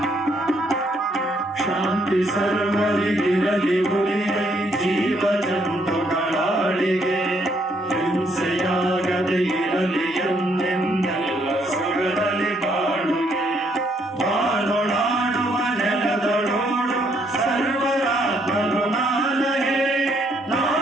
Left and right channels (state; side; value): normal; both; correlation 0.70